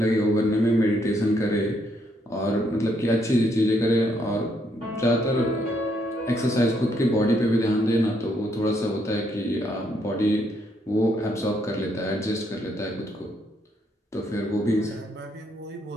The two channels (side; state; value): both; normal; correlation 0.73